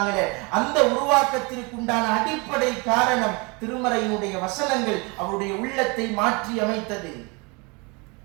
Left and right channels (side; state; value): left; quieter; 29.2 dB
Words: அந்த உருவாக்கத்திற்கு உண்டான அடிப்படை காரணம் திருமறையினுடைய வசனங்கள் அவருடைய உள்ளத்தை மாற்றி அமைத்தது.